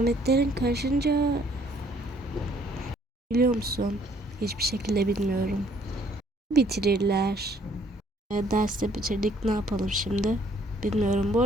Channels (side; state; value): both; normal; correlation 0.63